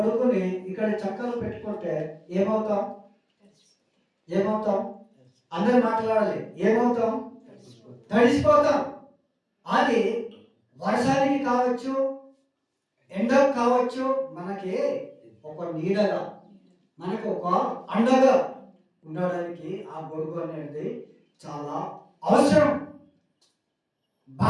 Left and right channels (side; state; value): both; identical; correlation 1.00